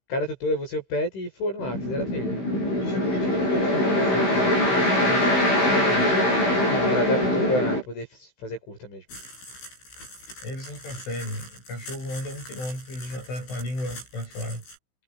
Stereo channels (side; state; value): right; late; 16 ms